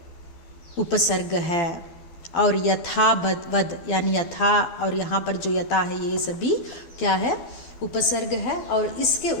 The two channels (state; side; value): late; right; 12 ms